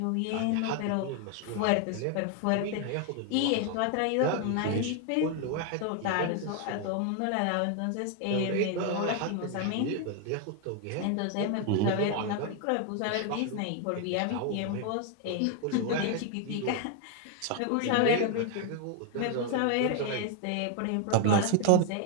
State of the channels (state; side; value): different; both; correlation 0.00